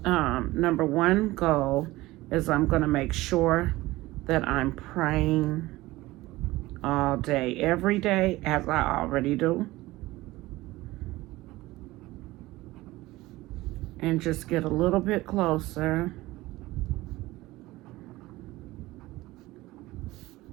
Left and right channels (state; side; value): quieter; left; 18.7 dB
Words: Number one goal is I'm going to make sure that I'm praying all day, every day, as I already do. And just get a little bit closer